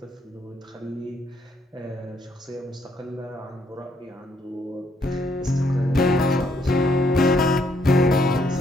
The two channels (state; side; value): normal; both; correlation 0.71